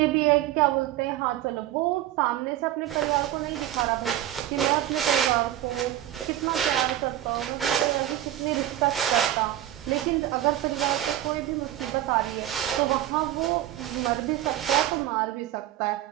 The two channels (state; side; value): quieter; left; 13.1 dB